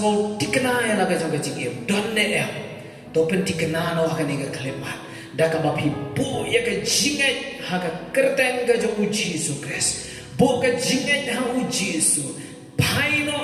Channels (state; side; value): identical; both; correlation 1.00